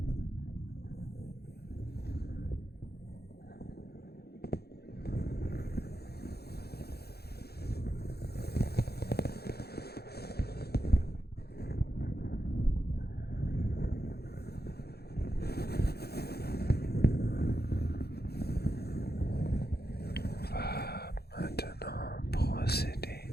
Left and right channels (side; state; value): right; late; 0.46 ms